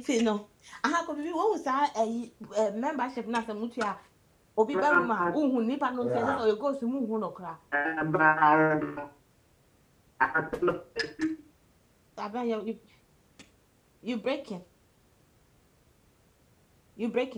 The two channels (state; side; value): identical; both; correlation 1.00